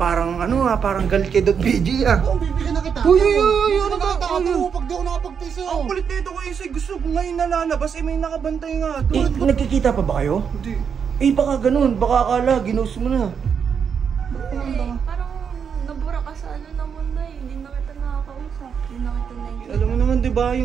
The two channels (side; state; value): left; quieter; 6.9 dB